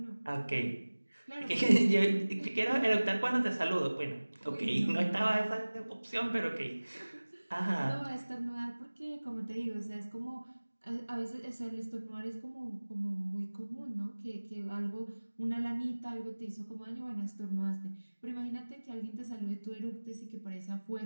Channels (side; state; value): both; inverted; correlation -1.00